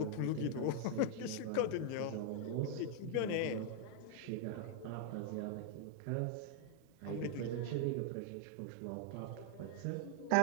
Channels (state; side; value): different; both; correlation 0.00